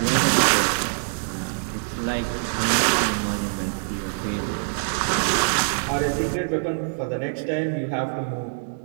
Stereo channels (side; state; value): left; silent; 62 dB below the other